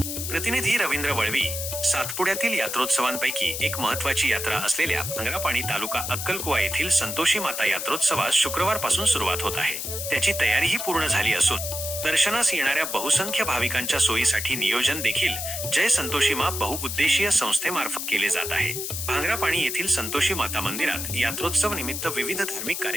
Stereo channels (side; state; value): left; noise; hiss, 4 dB below the sound